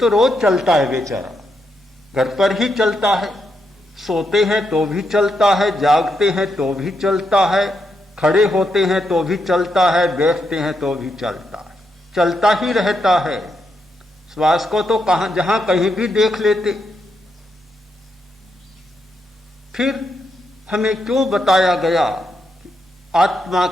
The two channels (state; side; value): normal; both; correlation 0.81